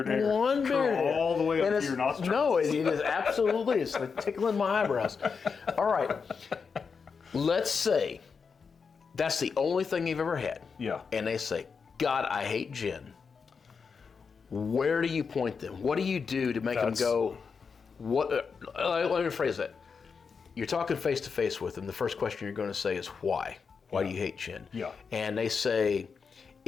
hair one beard hair. all the way up to your nostrils. No, it is absolutely. It's like tickling my eyebrows. All right. Let's say that's the only thing you've ever had. Yeah. And they say, God, I hate gin. Where do you point them? What do you do to make them go, what? Let me rephrase that. You're talking face to face with them. The first question you're going to say is, why? Why do you hate gin? Yeah. And they say,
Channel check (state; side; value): quieter; right; 5.6 dB